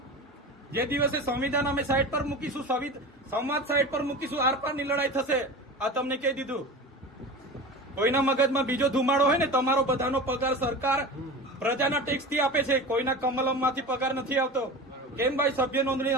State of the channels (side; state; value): both; normal; correlation 0.31